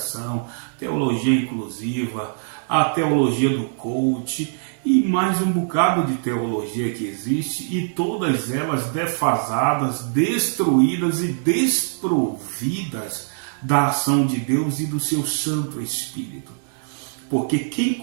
teologia inclusiva, a teologia do coach e mais um bocado de teologia que existe, e todas elas defasadas, destruídas e desprovidas da ação de Deus e do seu Santo Espírito. Porque quem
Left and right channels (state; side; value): silent; left; digital silence